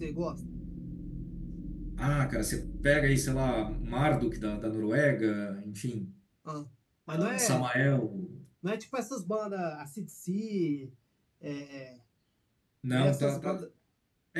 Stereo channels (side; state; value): both; identical; correlation 1.00